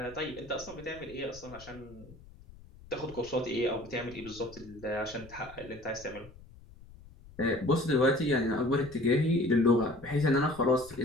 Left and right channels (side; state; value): left; noise; rumble, 20 dB below the sound